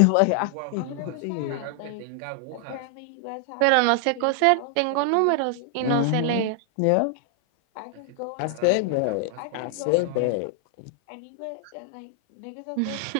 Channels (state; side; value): different; both; correlation 0.00